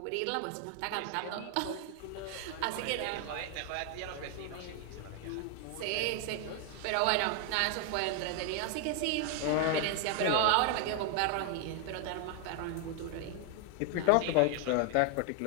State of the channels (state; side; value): different; both; correlation 0.00